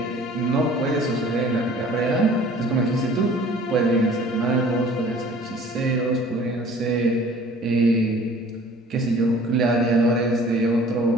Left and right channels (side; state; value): both; normal; correlation 0.50